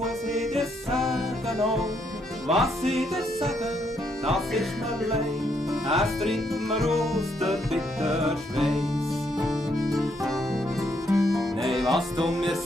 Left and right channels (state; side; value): normal; both; correlation 0.74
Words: ich dir sagen? Oh, was ich dir sagen, das ist mir leid. Es trinkt mir aus der bitter Schweiß. Nein, was du mir